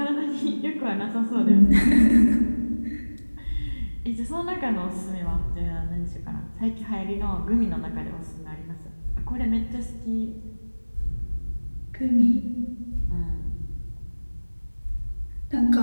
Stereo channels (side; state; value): both; inverted; correlation -1.00